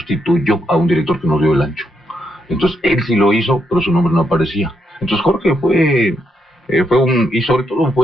a un director que nos dio el ancho. Entonces él sí lo hizo, pero su nombre no aparecía. Entonces Jorge y sobre todo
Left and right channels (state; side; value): normal; both; correlation 0.79